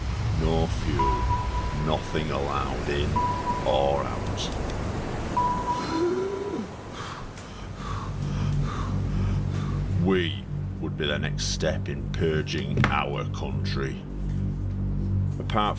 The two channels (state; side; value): identical; both; correlation 1.00